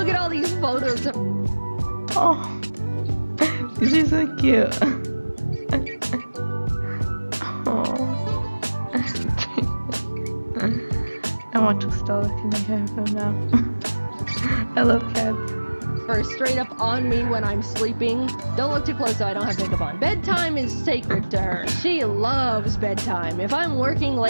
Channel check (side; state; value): both; inverted; correlation -1.00